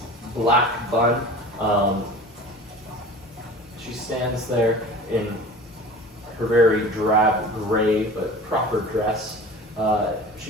black bun. She stands there in her very drab gray but proper dress.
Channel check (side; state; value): both; normal; correlation 0.39